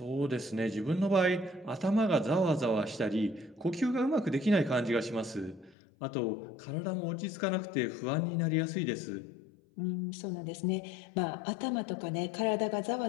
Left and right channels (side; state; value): right; drops out; at 5.8 s